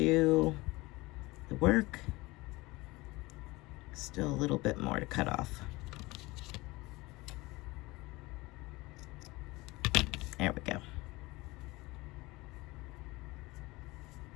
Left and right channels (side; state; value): right; quieter; 21.7 dB